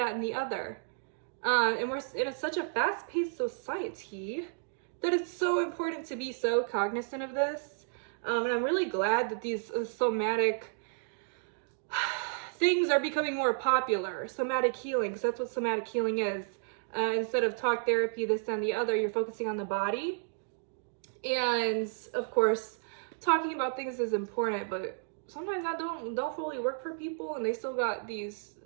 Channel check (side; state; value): left; silent; digital silence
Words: and the other. And we're in such a fast-paced society that it's so important to be so cognizant of this. And I'm really glad that these somatic things are becoming more popular. Somatic healing, because that's what somatic healing is. Instead of talk therapy, this, that, and the other, you're focusing on the body. And of course, talking about things is important, but sometimes that don't fully work for people, and they still got these